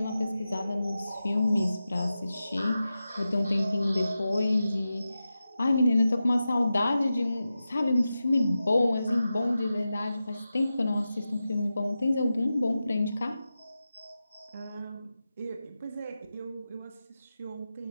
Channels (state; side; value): inverted; both; correlation -0.92